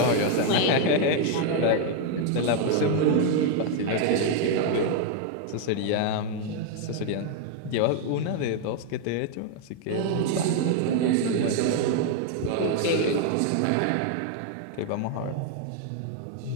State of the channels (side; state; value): both; different; correlation 0.00